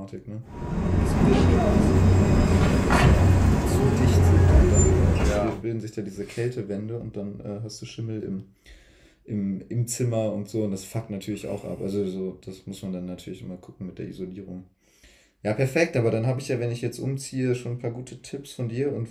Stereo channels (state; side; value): identical; both; correlation 1.00